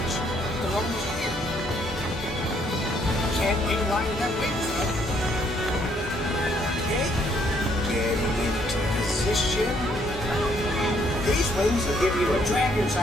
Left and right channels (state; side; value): normal; both; correlation 0.68